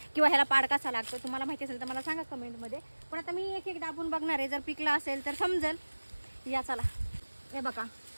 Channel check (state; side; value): inverted; both; correlation -1.00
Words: किंवा ह्याला पाड कसा लागतो. तुम्हाला माहिती असेल तर मला सांगा कमेंटमध्ये. पण आता मी एक एक दाबून बघणार आहे. जर पिकलं असेल तर समजेल. या चला, हे बघा,